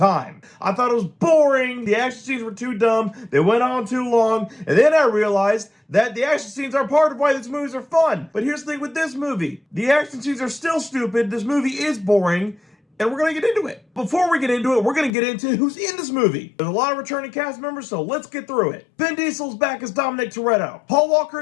I thought it was boring, the action scenes were too dumb, they went on too long, and then I realized that the action scenes are part of why these movies are fun. But here's the thing with this movie. The action scenes are still stupid, this movie is boring, and we're going to get into it. Before we get into it, we're going to get into who's in this movie. There's a lot of returning cast members, so let's get through it. Vin Diesel's back as Dominic Toretto. Paul Walker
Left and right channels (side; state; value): right; drops out; at 15.1 s